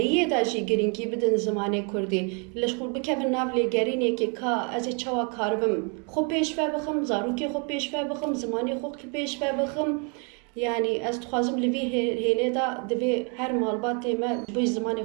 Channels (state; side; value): quieter; left; 36.6 dB